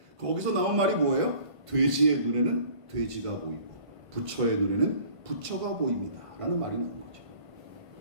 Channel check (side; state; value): left; late; 1.5 ms